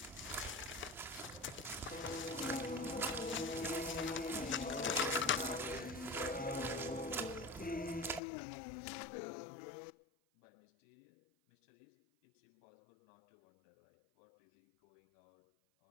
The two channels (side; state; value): right; drops out; at 8.2 s